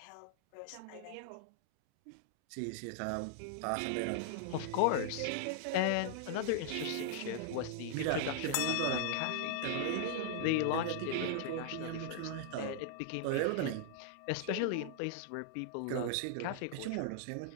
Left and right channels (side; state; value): both; different; correlation -0.01